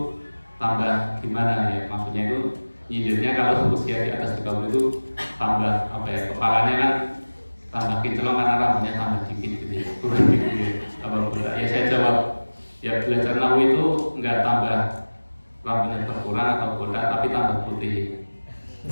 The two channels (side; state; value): both; inverted; correlation -1.00